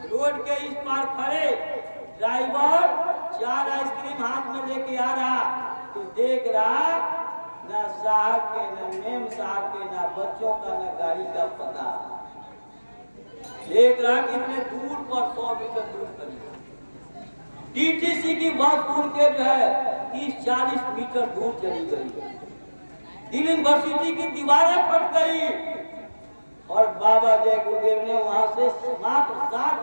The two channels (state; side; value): inverted; both; correlation -1.00